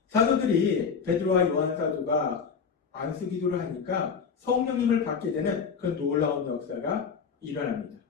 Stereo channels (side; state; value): right; quieter; 6.1 dB